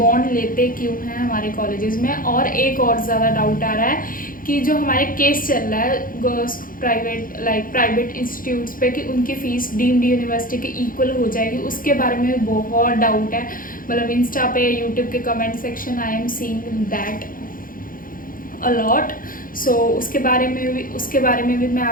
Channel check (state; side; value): late; right; 0.40 ms